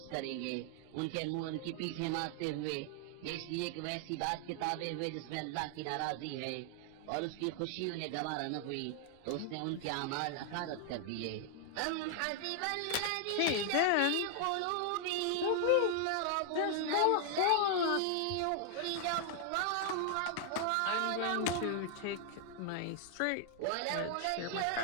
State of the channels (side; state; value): both; different; correlation 0.00